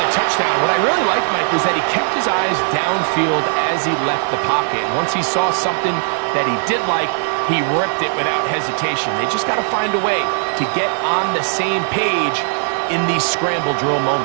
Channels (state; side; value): silent; left; 57 dB below the other